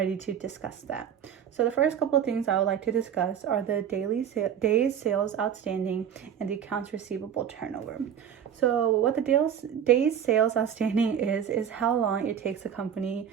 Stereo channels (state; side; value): quieter; left; 8.6 dB